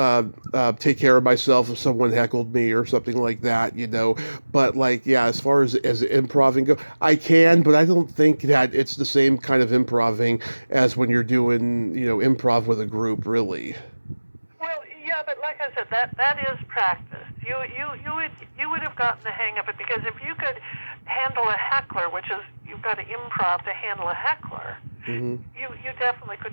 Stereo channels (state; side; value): inverted; both; correlation -1.00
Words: take care of myself if someone heckled me or something like that, But as far as improving go, I can, but I don't think that it's the same kind of improving as when you're doing, improv with a group, really. Well, yeah, but like I said, that is practice. You would have gotten the hang of it, because if you could handle a heckler, which is, you've got to improv to handle a heckler, you definitely